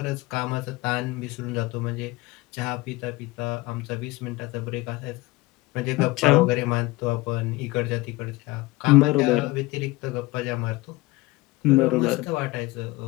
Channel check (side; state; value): right; quieter; 20.9 dB